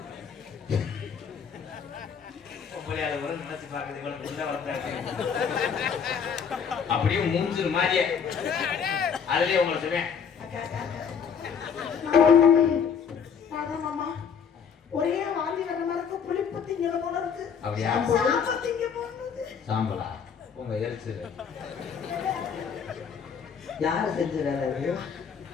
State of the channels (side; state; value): right; quieter; 6.8 dB